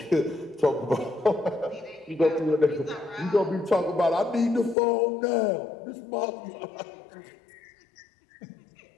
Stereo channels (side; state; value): right; drops out; at 4.8 s